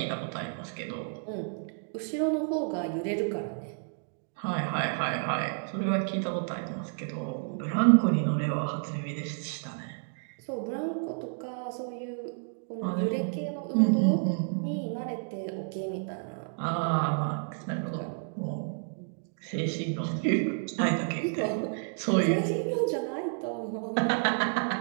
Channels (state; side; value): silent; left; 57 dB below the other